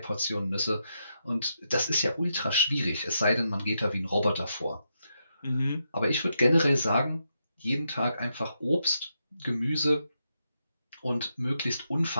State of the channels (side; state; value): both; inverted; correlation -0.83